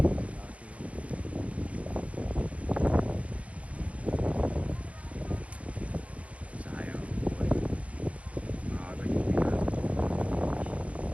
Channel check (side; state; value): left; late; 0.065 ms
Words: Sayang ang buhay. Maaga yung pinasok.